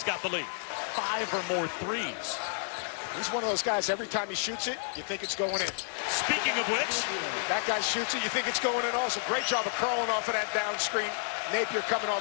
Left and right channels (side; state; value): right; silent; digital silence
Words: got the lead. 5 or more threes. He's one of those guys, every time he shoots it, you think it's going in. Speaking of which, that guy shoots it, you think it's going in also. Great job of curling off of that down screen. Napier coming